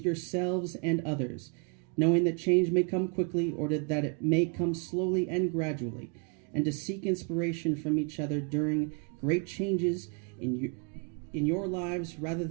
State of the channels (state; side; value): quieter; left; 37.3 dB